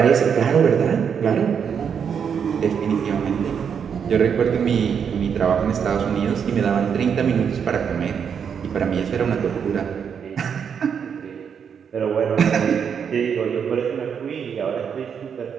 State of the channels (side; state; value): left; quieter; 7.2 dB